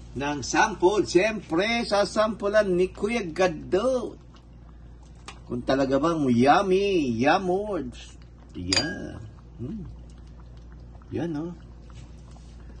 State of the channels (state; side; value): identical; both; correlation 1.00